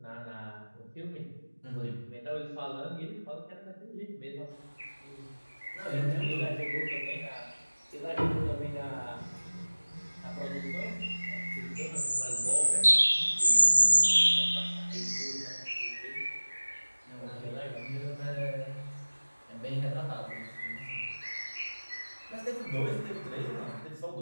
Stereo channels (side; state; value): both; inverted; correlation -1.00